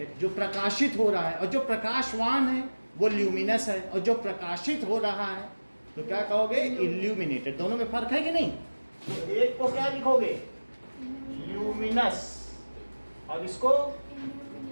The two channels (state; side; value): inverted; both; correlation -1.00